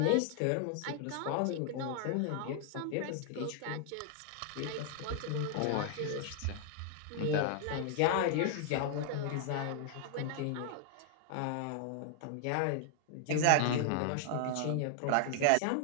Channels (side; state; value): both; different; correlation 0.00